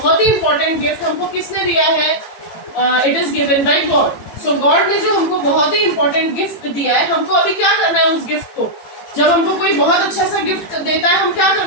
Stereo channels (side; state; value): right; late; 18 ms